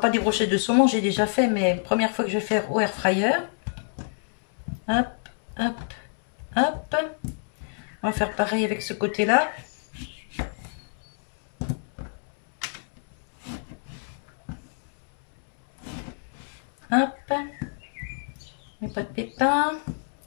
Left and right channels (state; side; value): silent; right; digital silence